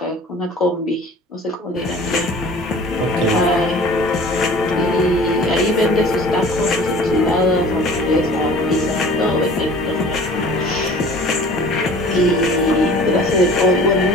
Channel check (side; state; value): both; normal; correlation 0.45